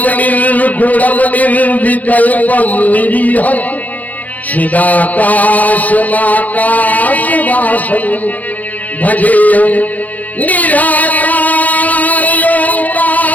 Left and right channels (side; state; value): right; late; 0.079 ms